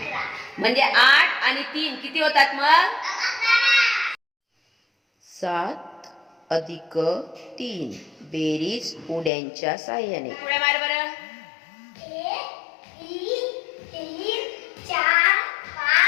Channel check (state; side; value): drops out; right; at 9.3 s